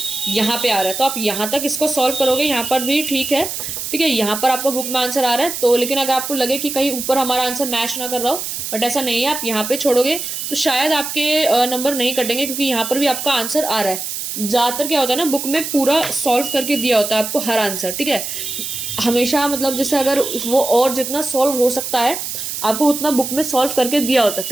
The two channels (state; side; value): noise; right; hiss, 5 dB below the sound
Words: यहाँ पे आ रहा है, तो आप यहाँ तक इसको सॉल्व करोगे, यहाँ पर भी ठीक है, ठीक है। यहाँ पर आपका बुक में आंसर आ रहा है, तो लेकिन अगर आपको लगे कि कहीं ऊपर हमारा आंसर मैच ना कर रहा हो, बट ऐसा नहीं है, आप यहाँ पे छोड़ोगे तो शायद आपके नंबर नहीं कटेंगे, क्योंकि यहाँ पर भी आपका आंसर आ रहा है। ज़्यादातर क्या होता है ना, बुक में पूरा सॉल्व करके दिया होता है आपको हर आंसर, ठीक है। हमेशा मतलब जैसे अगर वो और जितना सॉल्व हो सकता है आपको उतना बुक में सॉल्व करके दिया होता है।